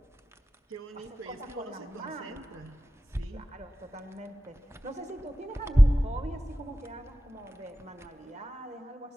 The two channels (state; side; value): normal; both; correlation 0.94